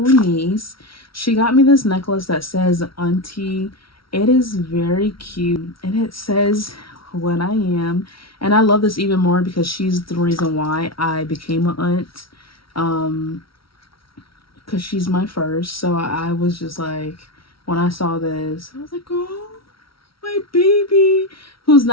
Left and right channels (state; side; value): late; right; 0.75 ms